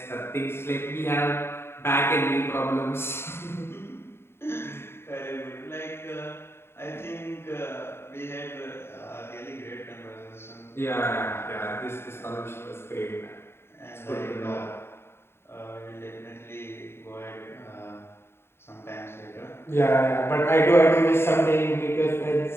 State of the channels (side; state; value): right; late; 0.12 ms